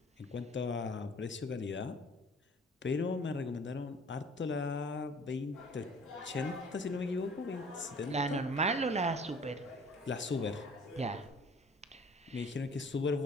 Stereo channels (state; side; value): normal; both; correlation 0.51